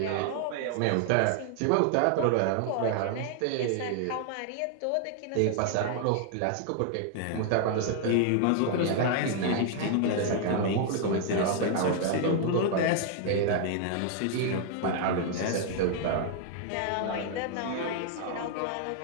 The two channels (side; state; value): both; different; correlation 0.00